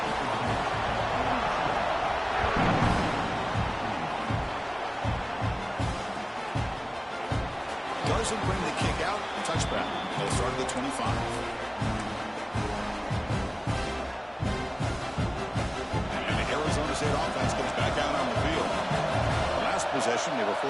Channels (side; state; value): both; identical; correlation 1.00